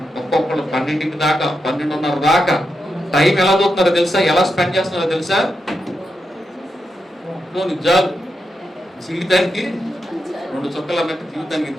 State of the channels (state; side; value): normal; both; correlation 0.86